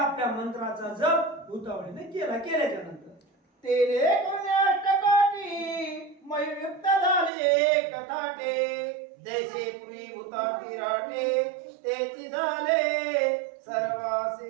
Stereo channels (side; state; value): left; drops out; at 7.3 s